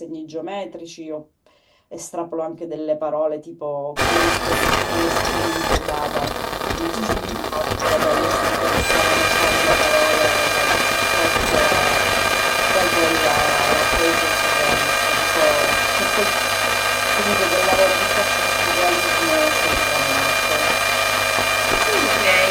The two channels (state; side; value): identical; both; correlation 1.00